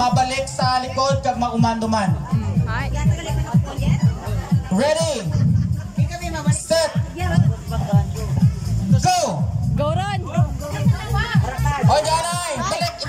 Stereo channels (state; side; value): identical; both; correlation 1.00